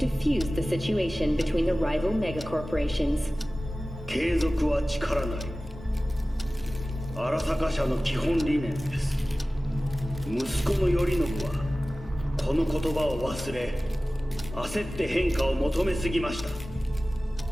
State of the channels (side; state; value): both; normal; correlation 0.97